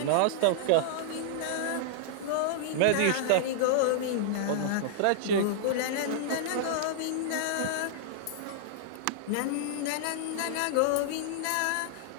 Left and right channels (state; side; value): different; both; correlation -0.01